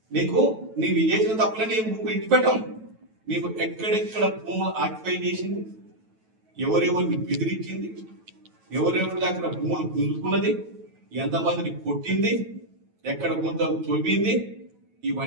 నీకు నీవు చేసిన తప్పులని ఇచ్చిపెట్టాం. నీకు ఎక్కడెక్కడ భూములు ఆక్యుపై చేసింది, ఎవరెవరిని బెదిరించింది, ఎవరెవరి దగ్గర భూములు గుంజుకున్నది, ఎంతమందిని కొట్టింది, ఎక్కడ గుంతలు తవ్వింది,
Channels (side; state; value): left; late; 9.2 ms